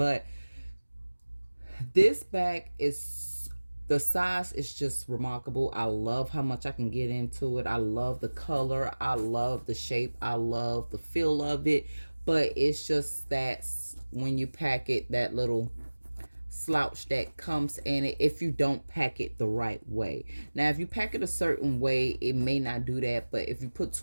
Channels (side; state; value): both; inverted; correlation -1.00